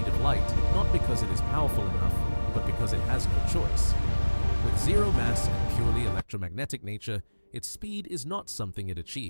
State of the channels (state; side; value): inverted; both; correlation -1.00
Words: of light not because it is powerful enough, but because it has no choice. With zero mass and purely electromagnetic nature, its speed is not something it